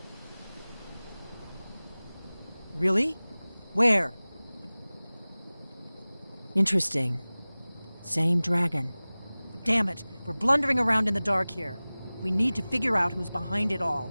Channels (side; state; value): both; inverted; correlation -0.99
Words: Really? Where? Interesting. Same dragon. Damn it, we're blundering around in the dark here. We need to figure out who's behind it all.